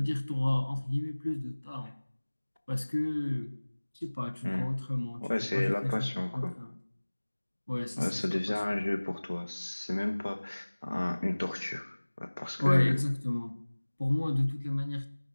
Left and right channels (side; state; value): both; inverted; correlation -1.00